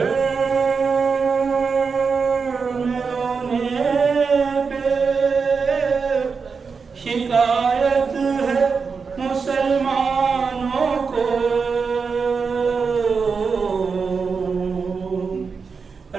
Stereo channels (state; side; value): quieter; left; 5.3 dB